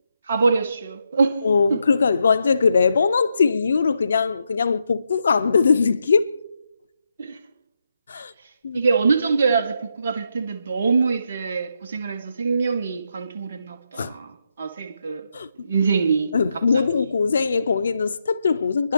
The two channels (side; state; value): both; inverted; correlation -0.82